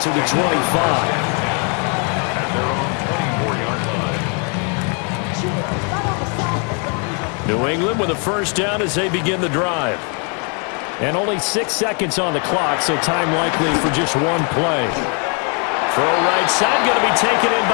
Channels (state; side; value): quieter; right; 38.0 dB